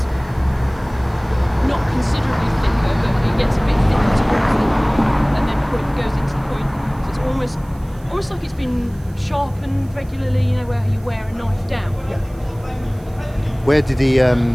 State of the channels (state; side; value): noise; right; hiss, 28 dB below the sound